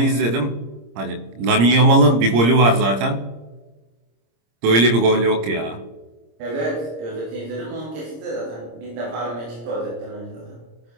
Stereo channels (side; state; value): left; late; 26 ms